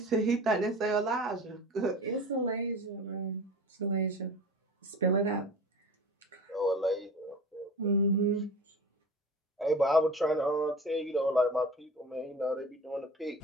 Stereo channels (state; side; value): normal; both; correlation 0.36